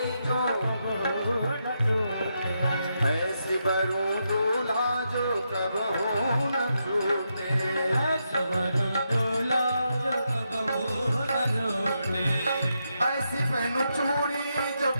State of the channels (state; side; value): inverted; both; correlation -0.83